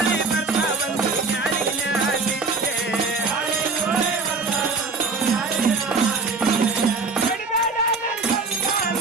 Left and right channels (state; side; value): quieter; left; 4.2 dB